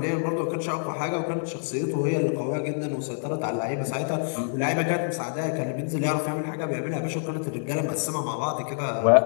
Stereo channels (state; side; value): silent; right; 60 dB below the other